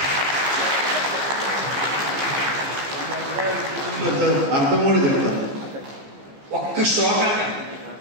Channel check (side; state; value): left; late; 15 ms